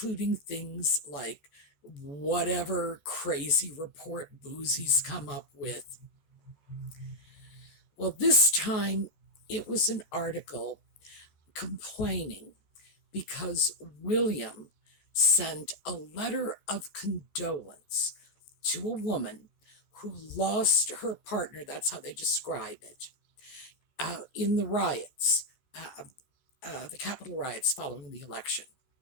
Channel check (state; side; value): late; right; 14 ms